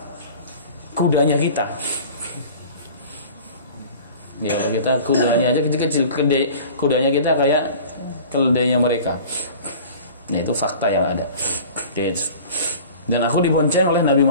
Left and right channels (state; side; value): inverted; both; correlation -0.42